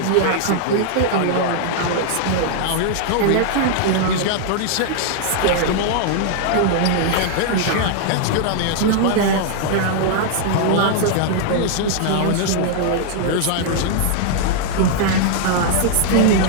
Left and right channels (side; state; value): both; different; correlation -0.01